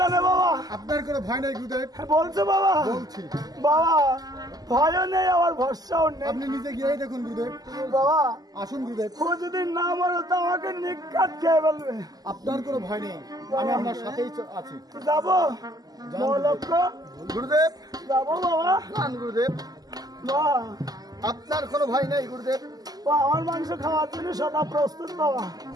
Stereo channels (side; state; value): left; late; 0.18 ms